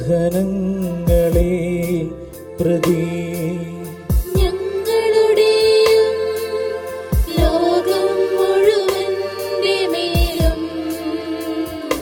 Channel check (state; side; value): identical; both; correlation 1.00